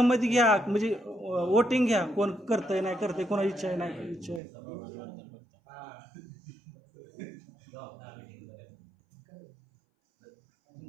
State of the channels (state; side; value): drops out; left; at 4.4 s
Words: घ्या, म्हणजे वोटिंग घ्या, कोण करतंय नाही करतंय, कोणाची इच्छा आहे नाही इच्छा आहे.